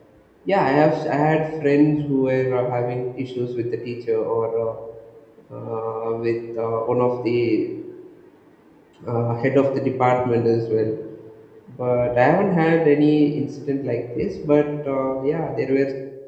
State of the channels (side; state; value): both; identical; correlation 1.00